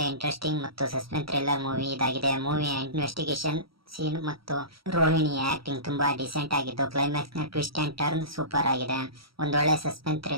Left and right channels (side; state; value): left; late; 0.75 ms